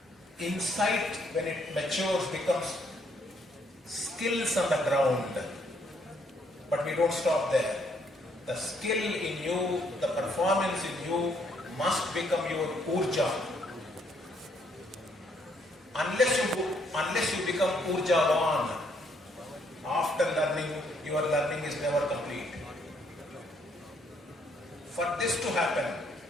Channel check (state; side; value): normal; both; correlation 0.70